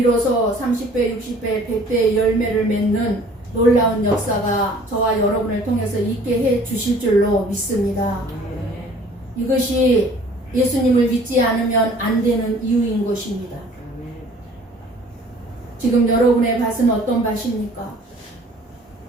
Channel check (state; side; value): normal; both; correlation 0.52